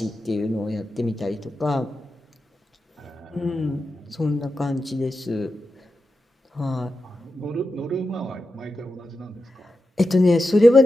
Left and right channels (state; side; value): normal; both; correlation 0.90